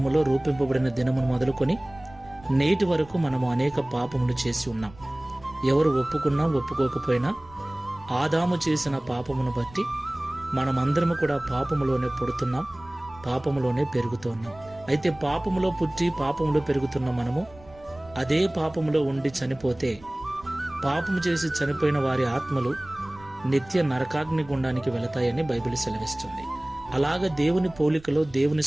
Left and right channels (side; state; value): right; noise; rumble, 22 dB below the sound